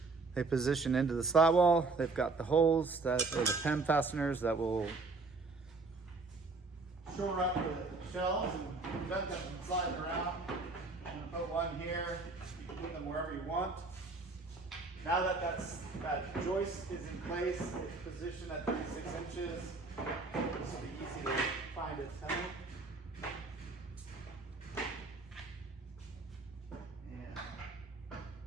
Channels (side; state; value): left; quieter; 3.8 dB